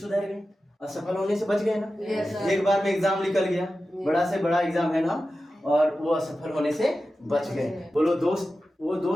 गए, असफल होने से बच गए ना? एक बार में एग्जाम निकल गया, बड़ा से बड़ा एग्जाम है ना, और वो असफल होने से बच गए। बोलो दोस्त, वो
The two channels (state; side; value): normal; both; correlation 0.93